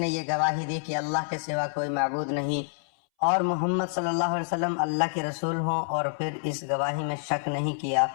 یہ گواہی دی کہ اللہ کے سوا کوئی معبود نہیں اور محمد صلی اللہ علیہ وسلم اللہ کے رسول ہوں، اور پھر اس گواہی میں شک نہیں کیا،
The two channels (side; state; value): right; silent; 60 dB below the other